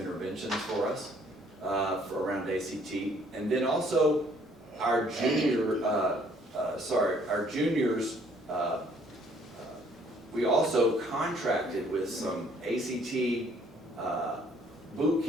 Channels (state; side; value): normal; both; correlation 0.62